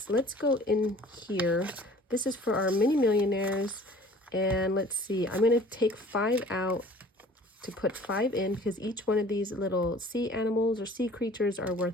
Let's go in here. This is for our mini millionaires. And let's see, I'm going to take 5 out to put 5 in because each one of these little sea animals or sea creatures are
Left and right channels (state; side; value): normal; both; correlation 0.49